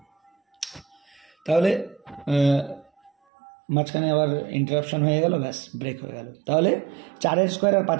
তাহলে মাঝখানে আবার ইন্টারাপশন হয়ে গেল, ব্যাস ব্রেক হয়ে গেল। তাহলে 4 স্কোয়ার আর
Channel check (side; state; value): left; drops out; at 3.1 s